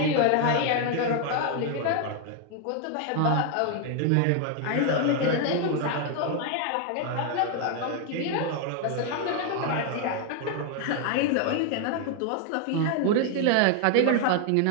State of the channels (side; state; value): both; different; correlation 0.00